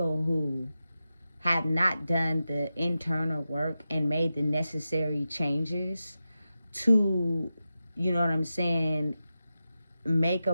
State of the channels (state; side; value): inverted; both; correlation -0.91